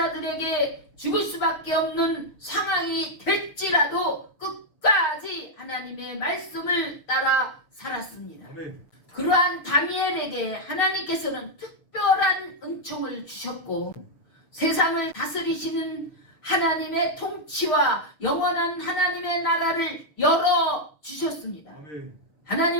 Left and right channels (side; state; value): right; late; 6.5 ms